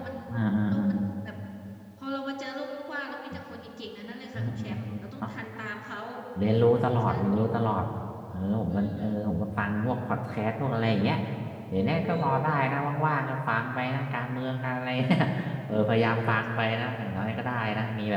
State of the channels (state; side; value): identical; both; correlation 1.00